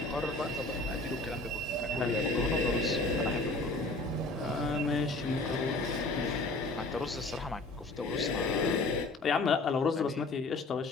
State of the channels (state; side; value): quieter; right; 3.1 dB